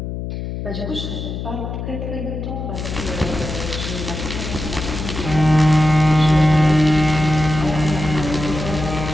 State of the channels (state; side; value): noise; left; hum, 6 dB below the sound